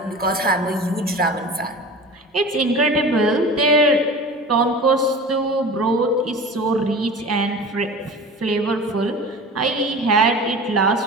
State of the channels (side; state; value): both; normal; correlation 0.36